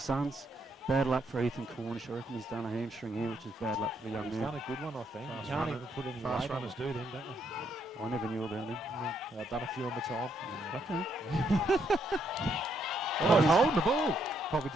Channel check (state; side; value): normal; both; correlation 0.74